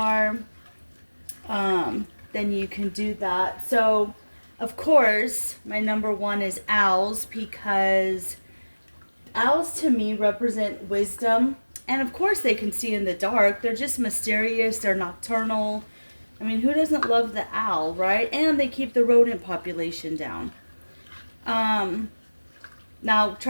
then you can do that. So of course, my number 1 is owls, because owls to me represent wisdom. And of course they can see in the dark. They're just mysterious. They're nocturnal. I mean, who doesn't love the owl, right? And they keep the rodent population down. Now,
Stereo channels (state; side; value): inverted; both; correlation -1.00